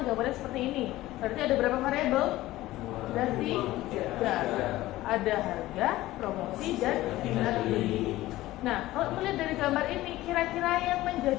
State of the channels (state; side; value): quieter; right; 16.7 dB